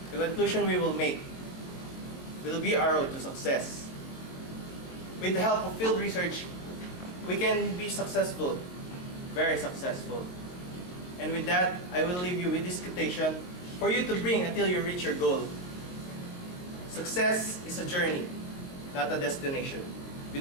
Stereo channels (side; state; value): right; late; 22 ms